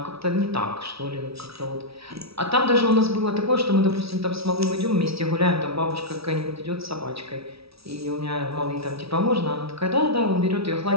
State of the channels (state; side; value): late; left; 0.76 ms